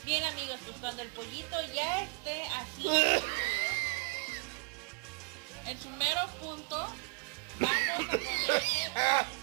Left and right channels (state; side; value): quieter; left; 33.2 dB